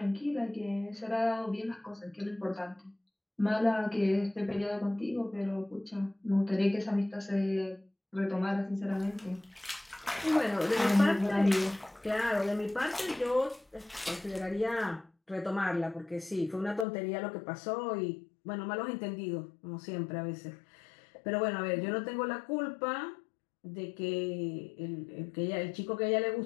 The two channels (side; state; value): right; drops out; at 16.9 s